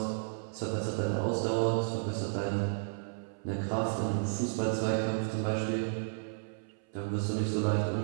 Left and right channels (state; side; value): silent; left; 56 dB below the other